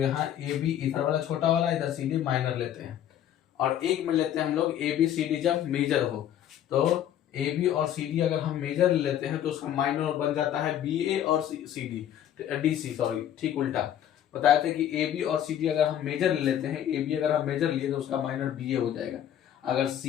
यहाँ ए बी इधर वाला छोटा वाला, इधर सी डी माइनर लेते हैं। और एक में लेते हैं हम लोग ए बी सी डी जब मेजर हो, तो ए बी और सी डी अगर हम मेजर लेते हैं तो उसका माइनर बन जाता है बी ए और C D D C, sorry ठीक उल्टा बताए थे कि ए बी और सी डी अगर हम मेजर ले लेते हैं, ए बी अगर हम मेजर लिए तो उसका माइनर बी ए हो जाएगा। अगर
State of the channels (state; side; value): quieter; right; 10.7 dB